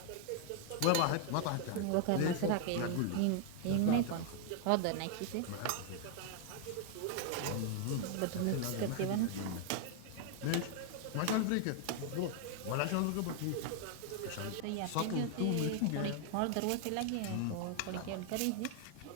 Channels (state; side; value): different; both; correlation 0.00